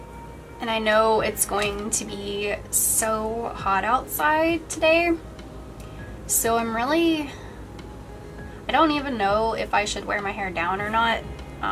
And I know it's going to be so hot outside today, so I don't even know if I should wear my hair down or not,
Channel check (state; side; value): identical; both; correlation 1.00